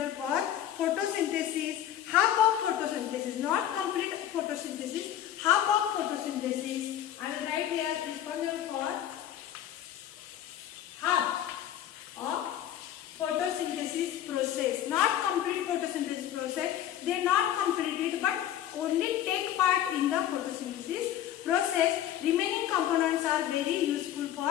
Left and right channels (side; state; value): right; quieter; 11.2 dB